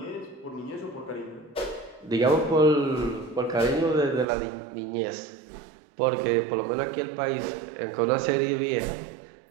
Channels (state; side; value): drops out; left; at 4.2 s